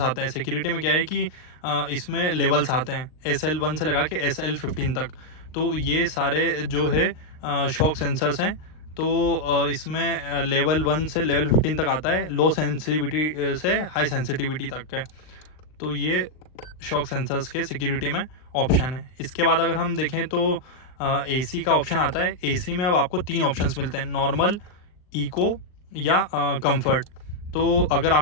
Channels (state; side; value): late; right; 39 ms